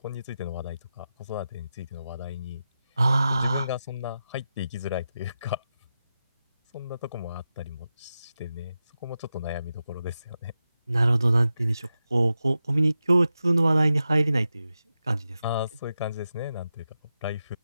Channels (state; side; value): inverted; both; correlation -0.90